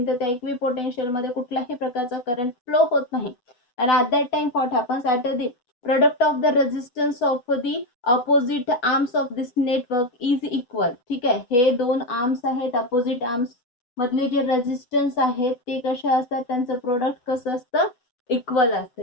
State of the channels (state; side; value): late; right; 7.9 ms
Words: तर त्या इक्विपोटेन्शियल मध्ये कुठल्याही प्रकारचा करंट फ्लो होत नाही. आणि at that time what happens? At the product of the resistance of the opposite arms of this network is equal. ठीक आहे. हे दोन आर्म्स आहेत, अपोजिट आर्म्स मधले जे रेजिस्टन्स आहेत ते कसे असतात? त्यांचं प्रोडक्ट कसं असतं? इक्वल असतं.